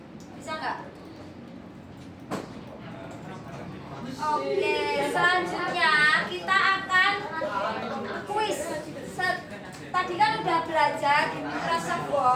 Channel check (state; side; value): identical; both; correlation 1.00